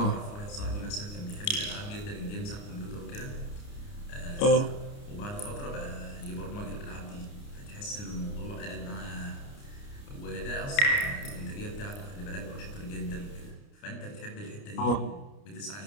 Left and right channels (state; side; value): late; right; 29 ms